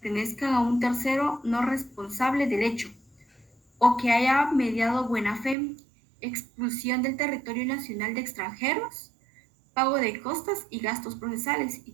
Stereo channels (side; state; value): left; drops out; at 5.6 s